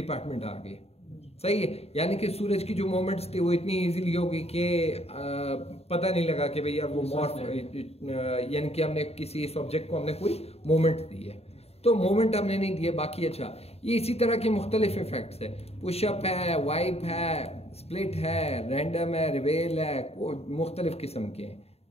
आ गया। सही है? यानी कि सूरज की जो मोमेंट्स थी वो इतनी इजीली होगी कि पता नहीं लगा कि भैया वो मॉर्फ, यानी कि हमने किसी इस ऑब्जेक्ट को हमने कोई मोमेंट दी है, तो मोमेंट हमने नहीं दिए। बाकी अच्छा, ये इसी तरह के मुख्तलिफ इफेक्ट्स है, पुशअप है, वाइप है, स्प्लिट है, रैंडम है, रिवेल है, मुख्तलिफ किस्म के हैं।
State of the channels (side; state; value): right; late; 0.30 ms